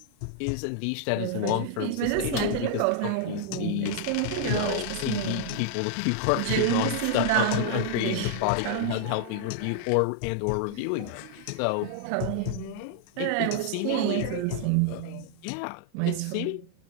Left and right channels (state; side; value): different; both; correlation -0.01